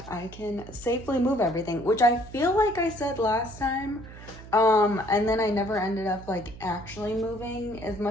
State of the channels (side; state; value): right; noise; hum, 16 dB below the sound